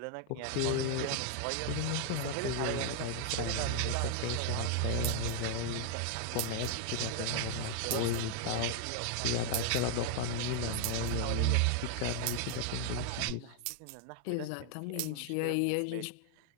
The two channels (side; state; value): both; different; correlation 0.00